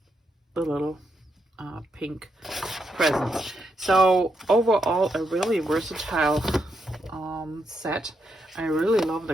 the little pink presents. So overall, a really versatile set. I really love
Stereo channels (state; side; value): normal; both; correlation 0.81